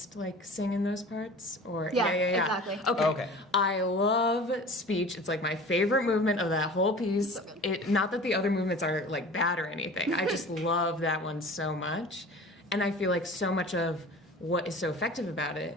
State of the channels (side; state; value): both; normal; correlation 0.40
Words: like sing in those parts? Or yeah, exactly. Okay. I love speech. It's like my favorite movement of that whole piece. Not that the other movements are like bad or anything. I just love that one so much. And I feel like so much of what is so effective about it